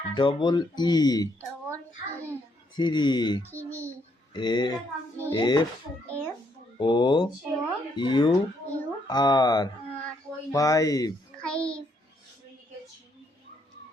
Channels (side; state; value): both; normal; correlation 0.73